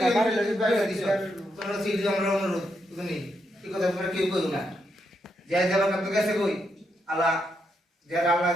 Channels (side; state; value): both; normal; correlation 0.81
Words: তোমরা সিটি আমরা অনুরোধ তুমি কি কথা তোমরা কেউ কইও না। যে যাবার কাছে গেছে কই আল্লাহ যে আল্লাহ